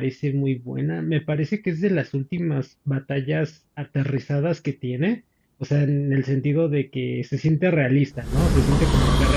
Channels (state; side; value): identical; both; correlation 1.00